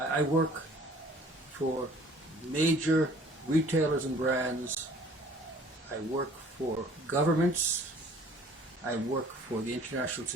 I work for major retailers and brands. I work for governments. I work for the international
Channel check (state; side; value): normal; both; correlation 0.53